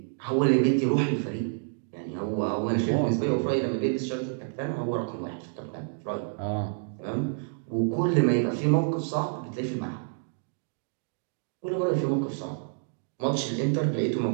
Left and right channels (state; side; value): silent; left; digital silence